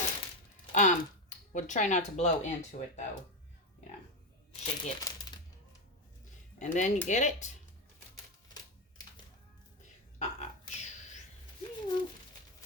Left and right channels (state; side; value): normal; both; correlation 0.11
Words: We'll try not to blow into it though. You know, shake it. And then you get it.